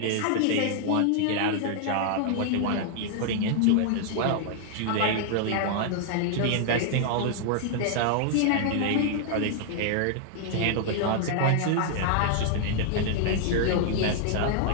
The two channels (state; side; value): different; both; correlation 0.00